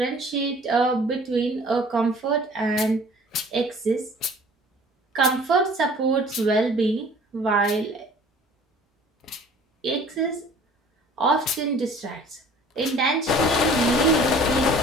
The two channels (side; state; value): both; normal; correlation 0.50